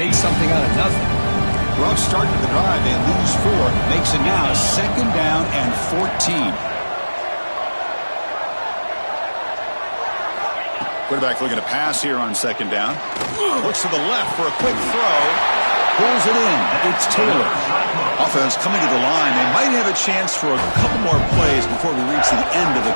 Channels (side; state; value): both; inverted; correlation -1.00